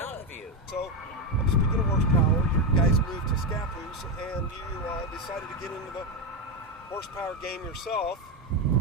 View. So, speaking of horsepower, you guys moved to Scappoose, and you decided to get into the horsepower game yourself.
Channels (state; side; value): normal; both; correlation 0.09